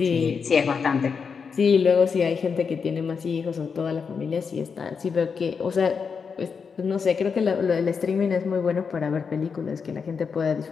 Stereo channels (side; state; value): right; quieter; 5.8 dB